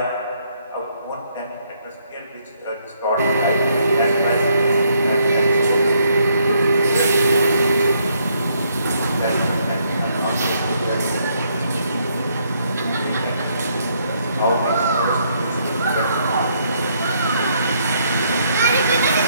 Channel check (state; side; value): inverted; both; correlation -0.71